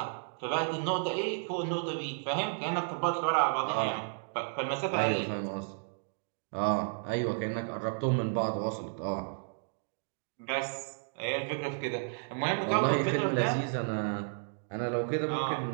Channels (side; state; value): left; silent; digital silence